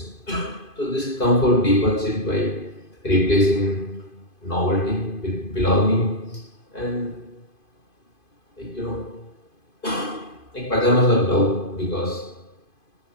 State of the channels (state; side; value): late; right; 2.5 ms